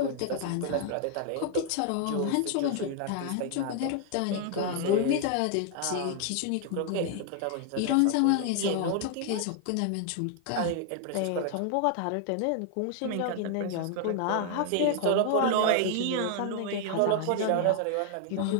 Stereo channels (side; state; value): both; different; correlation 0.00